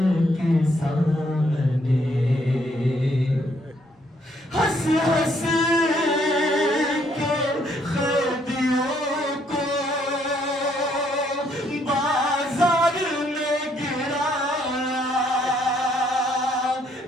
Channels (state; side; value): normal; both; correlation 0.69